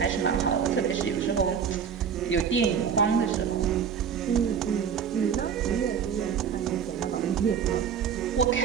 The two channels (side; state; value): left; quieter; 7.3 dB